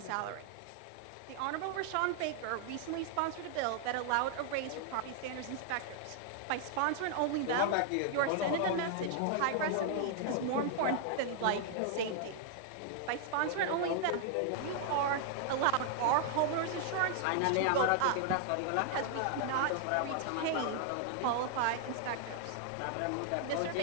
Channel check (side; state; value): both; different; correlation 0.00